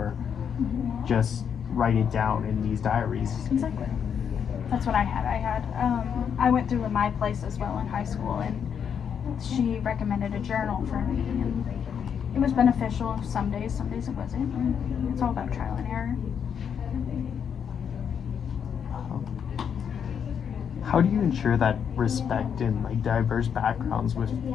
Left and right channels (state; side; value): quieter; right; 7.6 dB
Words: just write it down in these diaries. Exactly. That's what I had. I went through my place as well in high school, and she recommended a journal for me, and it was beneficial some days it wasn't. It's all about trial and error. How do you ensure that respect in like diverse backgrounds with